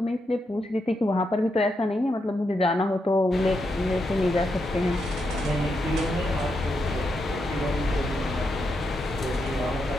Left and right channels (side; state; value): both; normal; correlation 0.83